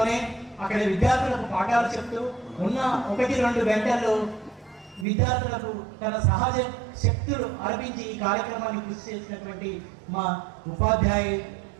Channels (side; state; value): left; drops out; at 5.1 s